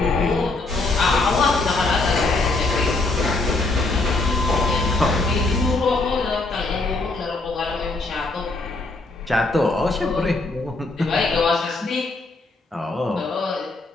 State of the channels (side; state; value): right; quieter; 3.3 dB